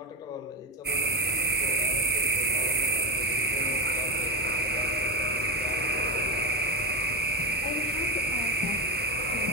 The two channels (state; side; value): normal; both; correlation 0.13